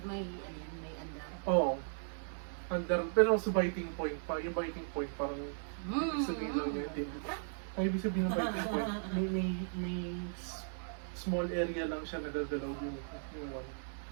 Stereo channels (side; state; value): left; silent; 53 dB below the other